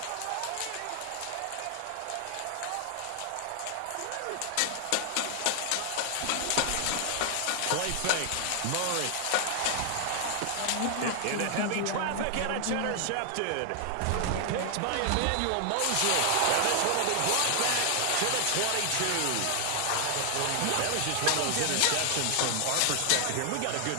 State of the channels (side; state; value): both; different; correlation 0.00